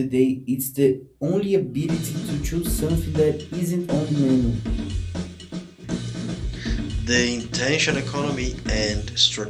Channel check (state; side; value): identical; both; correlation 1.00